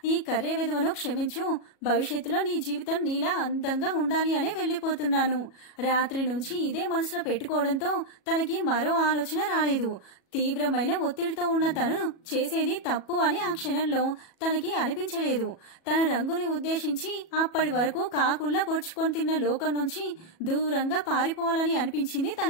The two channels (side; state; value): right; late; 37 ms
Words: ఈ కర్రే విధవను క్షమించు. భవిష్యత్తులో నీ జీవితం నీలా అందంగా ఉండాలి అనే వెళ్లిపోతున్నాను. రాత్రి నుంచి ఇదే మనసులో పెట్టుకోవడంతో తనకి మరో ఆలోచన రాలేదు. తీవ్రమైన ఒత్తిడితో ఉన్న తను చేసేది తప్పు అని ఆ క్షణంలో తనకి అనిపించలేదు. తన రంగుని ఉద్దేశించి అప్పటి వరకు కాకుల్లా పొడుచుకొని తిన్న లోకం నుంచి దూరంగా పారిపోవాలని అనిపించింది